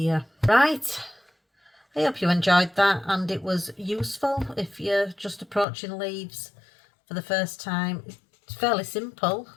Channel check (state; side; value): drops out; right; at 5.7 s